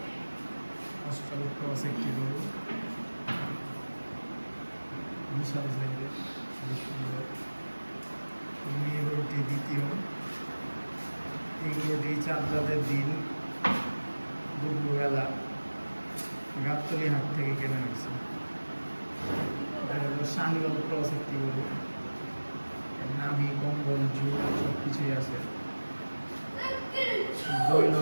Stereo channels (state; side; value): inverted; both; correlation -1.00